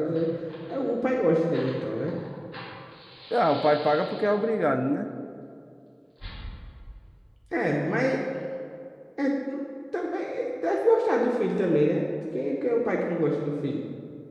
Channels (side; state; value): both; identical; correlation 1.00